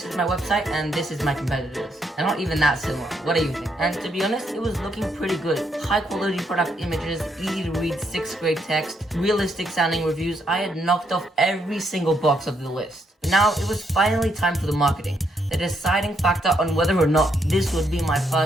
is my website and this is my competitors. They're not even that similar. What do you think? And to be honest, it was looking pretty good. High quality product images, easy to read 6th grade text, realistic sounding reviews. I had knocked off every single box of the list. Now it was finally time for the marketing. The deciding factor on whether or not this would be my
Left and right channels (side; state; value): both; normal; correlation 0.76